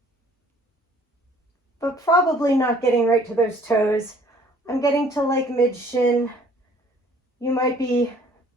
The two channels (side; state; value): both; normal; correlation 0.57